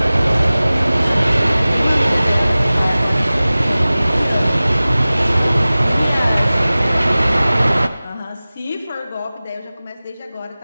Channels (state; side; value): inverted; both; correlation -0.98